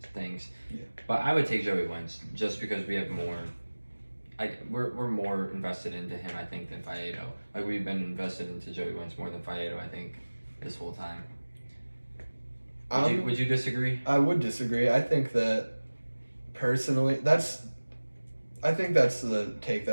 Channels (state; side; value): inverted; both; correlation -1.00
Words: things. Yeah. But I would take Joey Wentz just because we have more. We're more invested into him, I think, than Faedo. Like, we've been invested into Joey Wentz more than Faedo, I think, this whole time. Would you disagree? I would disagree. I think that personally, I think that's the take